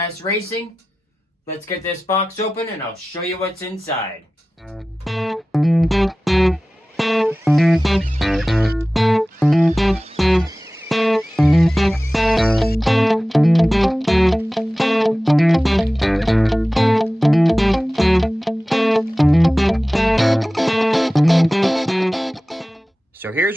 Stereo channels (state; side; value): normal; both; correlation 0.96